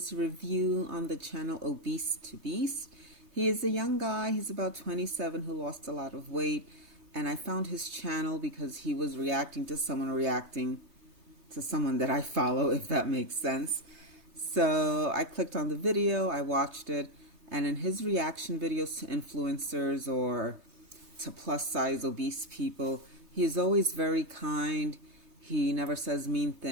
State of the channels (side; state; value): left; late; 3.3 ms